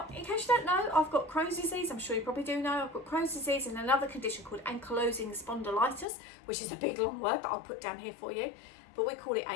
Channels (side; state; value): right; drops out; at 6.1 s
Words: in case you don't know, I've got Crohn's disease. I'm sure you probably do know. I've got Crohn's disease and another condition called ankylosing spondylitis, which is a big long word that I'll put down here for you, but we call it